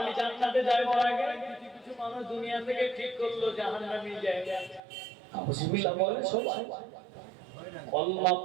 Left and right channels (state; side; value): drops out; left; at 4.8 s